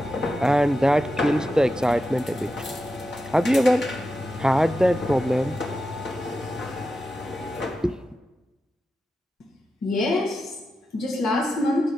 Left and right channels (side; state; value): both; normal; correlation 0.90